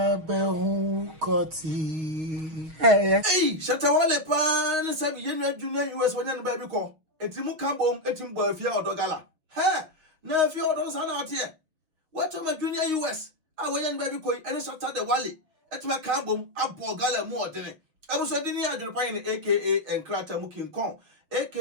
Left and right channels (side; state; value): left; late; 6.2 ms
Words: behu koti. Hey, Shatta Wale pan sabi yenu junior US wanyan baby ko. Etimu kambom etim bo Efia Odo gala. Ha, na Efia Odo sana out here. What am a junior US? I wanyan baby ko ene Shatta Wale. Etima kambom abo gala mu odene. Abuso dini AdwenepaheneTv aka Enkrata Mukin Kon